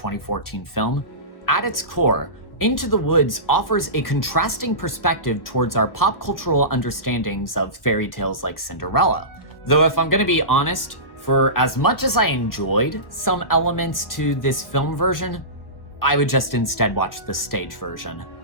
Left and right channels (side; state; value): right; late; 1.1 ms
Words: film, at its core, Into the Woods offers a contrasting perspective towards our pop cultural understandings of fairy tales like Cinderella. Though if I'm gonna be honest, for as much as I enjoyed some elements to this film version, I would just instead watch the stage version.